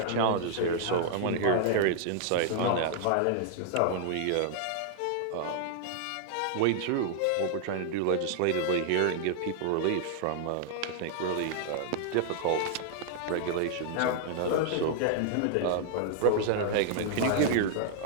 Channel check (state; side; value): different; both; correlation -0.01